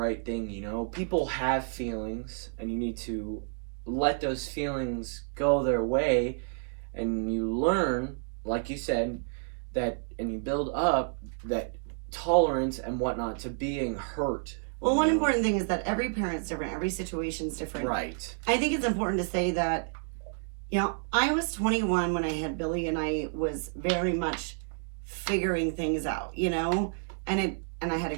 thing, People have feelings, and you need to let those feelings go their way, and you learn, like you said, and you build up that tolerance and whatnot to being hurt. Well, one important thing is that every parent's different, every situation's different. Right. I think it's important to say that, I was 21 when I had Billy, and I was very much figuring things out, and I had a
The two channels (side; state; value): left; silent; 58 dB below the other